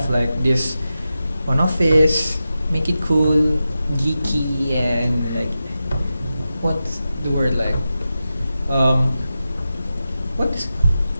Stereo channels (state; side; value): inverted; both; correlation -0.92